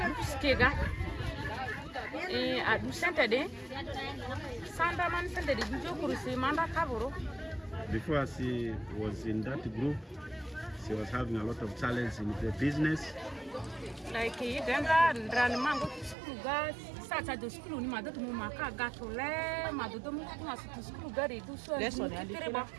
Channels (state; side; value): drops out; left; at 16.2 s